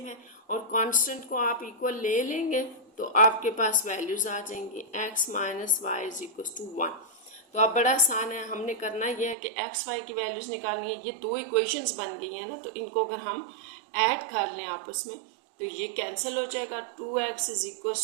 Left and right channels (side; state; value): left; drops out; at 9.3 s